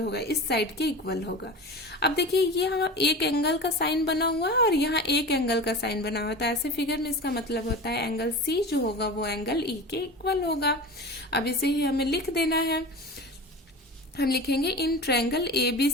इस साइड के इक्वल होगा। अब देखिए, यहाँ एक एंगल का साइन बना हुआ है और यहाँ एक एंगल का साइन बना हुआ है, तो ऐसे फिगर में इसका मतलब होता है एंगल सी जो होगा वो एंगल ई के इक्वल होगा। अब इसे ही हमें लिख देना है। हम लिखेंगे in triangle A B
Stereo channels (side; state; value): both; normal; correlation 0.31